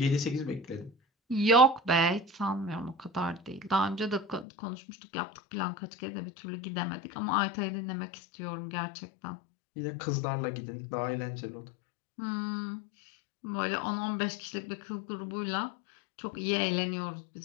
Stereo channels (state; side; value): drops out; right; at 4.5 s